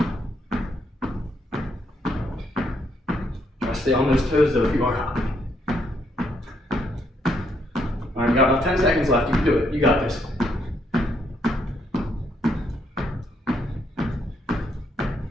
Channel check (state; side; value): normal; both; correlation 0.74